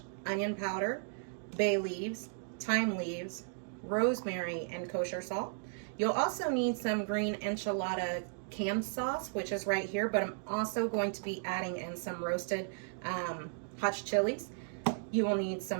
onion powder, bay leaves, thyme leaves, rosemary, and kosher salt. You'll also need some green enchilada canned sauce, which is right here, but I'm also going to be adding in some roasted hot chilies. You will need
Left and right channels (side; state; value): left; silent; digital silence